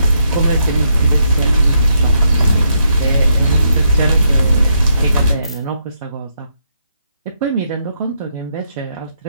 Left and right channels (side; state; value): both; inverted; correlation -0.78